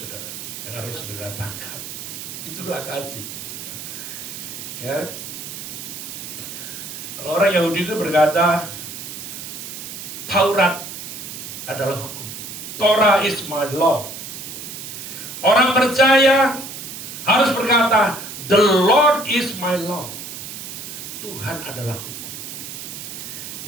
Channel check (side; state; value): right; noise; hiss, 9 dB below the sound